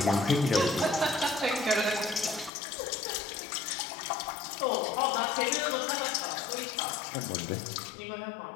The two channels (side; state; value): right; drops out; at 2.5 s